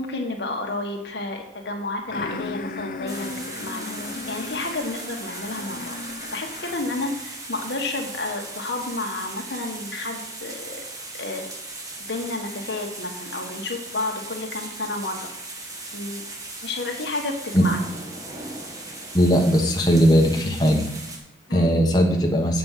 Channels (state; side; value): normal; both; correlation 0.57